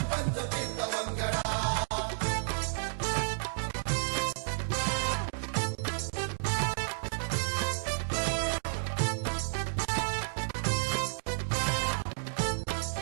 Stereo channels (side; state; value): left; silent; digital silence